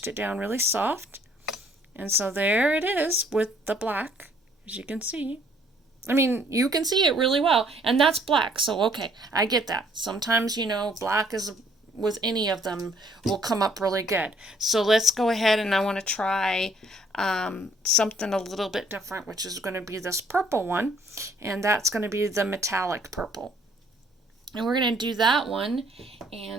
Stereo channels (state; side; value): normal; both; correlation 0.62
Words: it down really soft. And so there it is with the black, as you can see. I mean, you can see it really well. And that's black. So, okay, I get that. Sometimes, black is with any of them will come up really good. So let's go ahead, and I want to try something a little bit different, which is going to be this purple one, and that's going to be the metallic purple. And we're going to do that one,